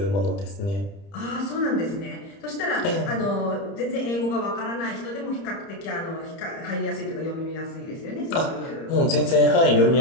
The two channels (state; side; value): late; right; 30 ms